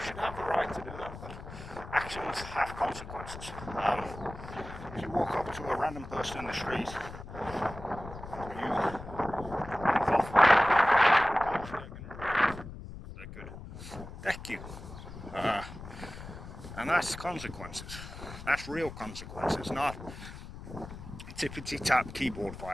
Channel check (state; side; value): noise; left; rumble, 12 dB below the sound